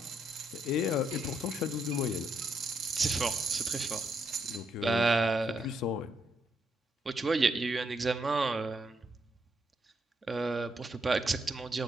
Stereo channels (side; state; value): both; normal; correlation 0.76